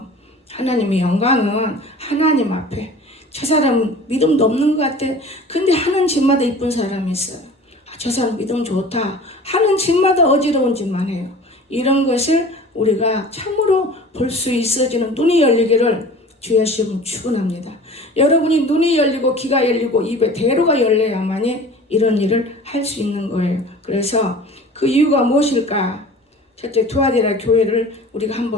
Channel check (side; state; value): both; normal; correlation 0.42